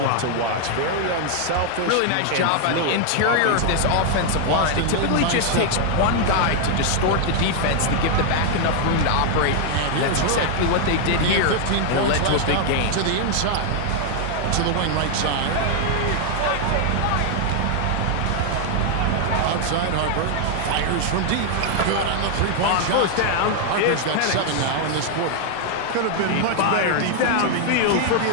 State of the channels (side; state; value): both; different; correlation 0.00